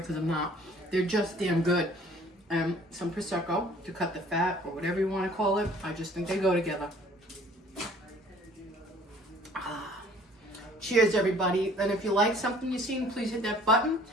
I'm not. They're just damn good. Some Prosecco to cut the fat or whatever you want to call it. I just think they go together. Cheers, everybody. And if you like something you've seen, please hit that button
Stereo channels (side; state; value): both; normal; correlation 0.54